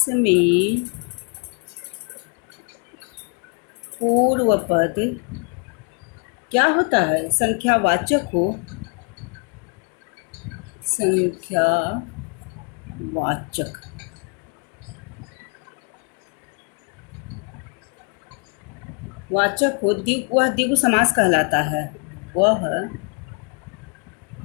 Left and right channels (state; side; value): quieter; right; 38.1 dB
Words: में पूर्व पद क्या होता है? संख्यावाचक हो, संख्यावाचक वाचक हो, वह द्विगु समास कहलाता है। वह